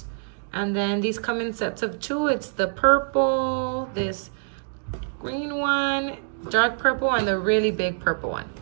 and then these come in sets of 2. It's the purple, this green one, dark purple, and the really big purple one.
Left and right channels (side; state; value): left; silent; digital silence